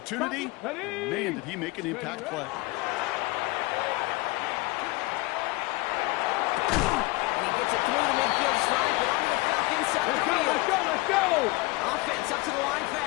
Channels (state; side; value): quieter; right; 22.8 dB